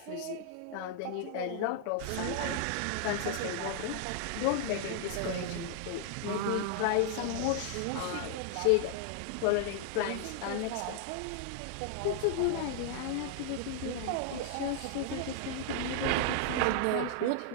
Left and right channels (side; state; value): both; different; correlation -0.01